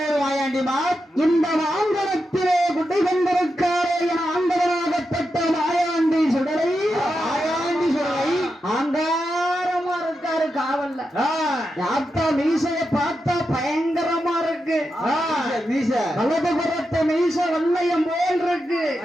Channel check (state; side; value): normal; both; correlation 0.88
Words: மா இந்த மாங்கலத்திலே குட்டை கொண்டிருக்காரே என ஆண்டவனாகப்பட்ட மாயாண்டி சுடலை ஆங்காரமா இருக்காரு காவல்ல. யாத்தா மீசைய பார்த்தா பயங்கரமா இருக்கு. வலது புறத்து மீசை வல்லையம் போல் இருக்கு.